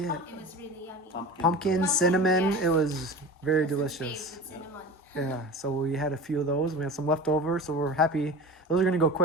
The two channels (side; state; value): both; normal; correlation 0.33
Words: It was really yummy. Pumpkin, cinnamon. yes. It was very That's his delicious. favorite, cinnamon. Yeah. So we had a few of those. We had some left over, so we're happy. Those are gonna go